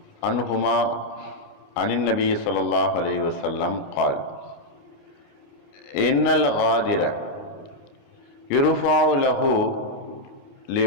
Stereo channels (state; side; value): late; right; 29 ms